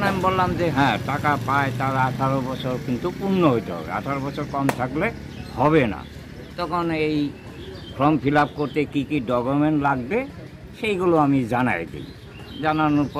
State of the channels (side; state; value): both; identical; correlation 1.00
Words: আমি বললাম যে হ্যাঁ, টাকা পায়, তার 18 বছর কিন্তু পূর্ণ হইতে হবে, 18 বছর কম থাকলে হবে না। তখন এই ফর্ম ফিল আপ করতে কী কী ডকুমেন্ট লাগবে সেইগুলো আমি জানাই দিই। জানানোর